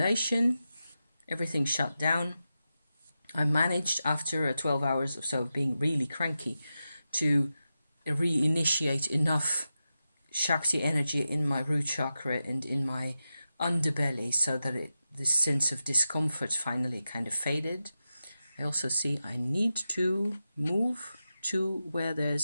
everything shut down. I managed after 12 hours or so of being really cranky to reinitiate enough Shakti energy in my root chakra and in my underbelly so that this sense of discomfort finally kind of faded. I also see I need to move to where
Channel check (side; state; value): both; inverted; correlation -0.91